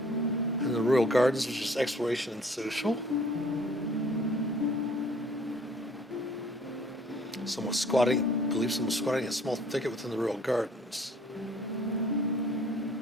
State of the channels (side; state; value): both; normal; correlation 0.55